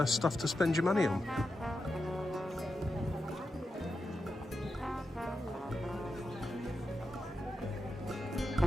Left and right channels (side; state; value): both; normal; correlation 0.88